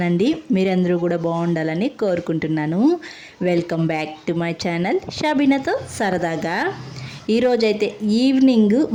మీరందరూ కూడా బాగుండాలని కోరుకుంటున్నాను. Welcome back to my channel షబీనాతో సరదాగా. ఈరోజైతే ఈవినింగ్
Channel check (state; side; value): identical; both; correlation 1.00